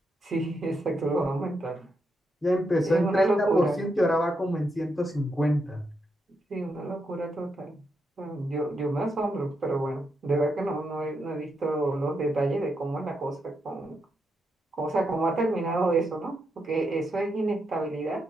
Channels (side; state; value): both; normal; correlation 0.82